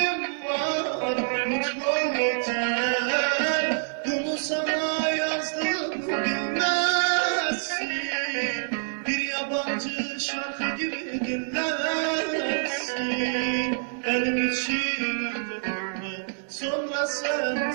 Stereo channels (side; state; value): left; silent; digital silence